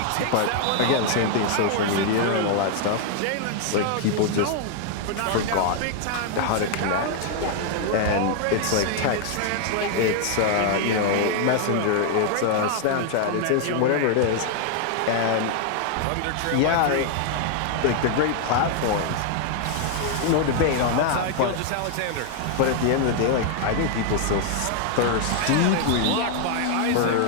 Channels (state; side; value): different; both; correlation 0.00